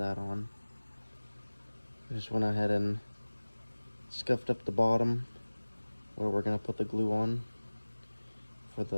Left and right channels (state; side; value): inverted; both; correlation -1.00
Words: on. I just went ahead and scuffed up the bottom where we're going to put the glue on for